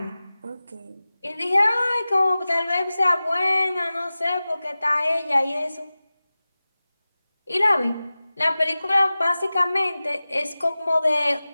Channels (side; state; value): both; inverted; correlation -0.97